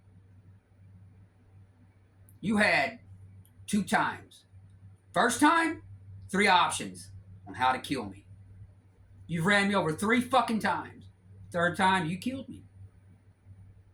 You had 2 times. First time, 3 options on how to kill me. You've ran me over 3 fucking times. 3rd time, you killed me.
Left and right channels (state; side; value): identical; both; correlation 1.00